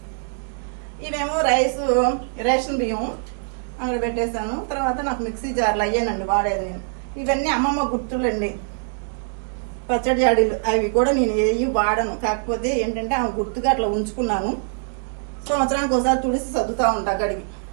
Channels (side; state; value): left; silent; 63 dB below the other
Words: ఇవేమో రేషన్ బియ్యం అక్కడ పెట్టేశాను. తర్వాత నాకు మిక్సీ జార్లు అయ్యానండి వాడేది. ఇవన్నీ అమ్మమ్మ గుర్తులండి, పచ్చడి జాడీలు. అవి కూడా నేను ఏవి వాడను, కాకపోతే ఏంటంటే ఆమె గుర్తుగా అట్లా ఉంచుకున్నాను. సంవత్సరానికి ఒకసారి తుడిసి సర్దుతా ఉంటా గడిగి.